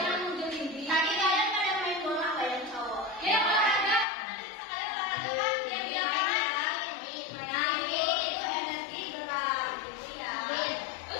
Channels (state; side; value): drops out; right; at 4.0 s